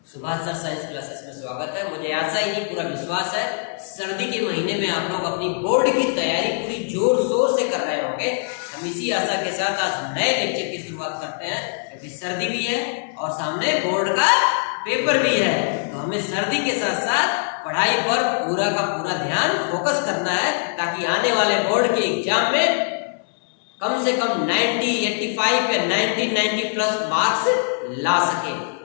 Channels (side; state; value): right; silent; 61 dB below the other